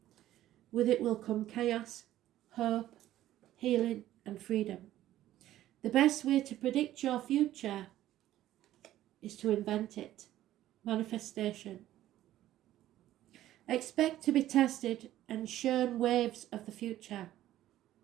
With it will come chaos, hope, healing, and freedom. The best way to predict your future is to invent it. Manifestation. Expect to be tested and shown waves of the future.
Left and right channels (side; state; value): left; quieter; 13.6 dB